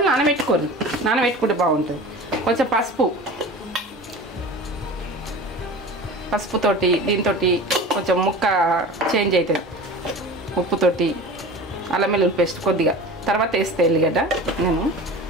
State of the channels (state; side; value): normal; both; correlation 0.36